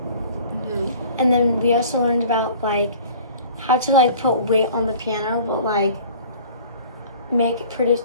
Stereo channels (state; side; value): inverted; both; correlation -0.47